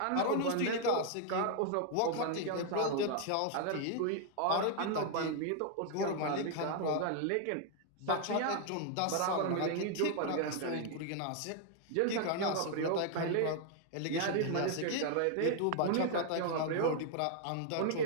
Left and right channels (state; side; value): different; both; correlation 0.00